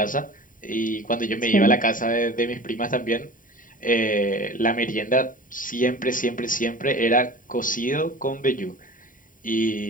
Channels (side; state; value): right; late; 0.39 ms